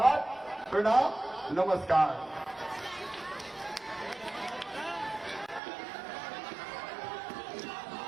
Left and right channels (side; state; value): left; drops out; at 5.6 s